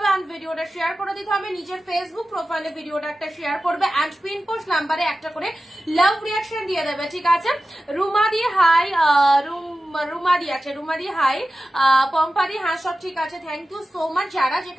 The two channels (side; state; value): both; normal; correlation 0.94